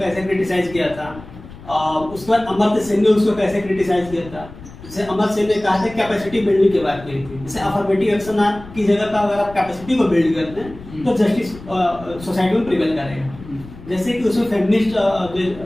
क्रिटिसाइज किया था, उसके बाद अमर्त्य सेन ने उसको कैसे क्रिटिसाइज किया था। जैसे अमर्त्य सेन ने कहा था कैपेसिटी बिल्डिंग की बात की थी, जैसे अफर्मेटिव एक्शन की जगह पर अगर आप कैपेसिटी को बिल्ड करते हैं तो जस्टिस सोसाइटी में प्रिवेल करेगा। जैसे कि उसमें फेमिनिस्ट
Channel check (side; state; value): left; noise; rumble, 17 dB below the sound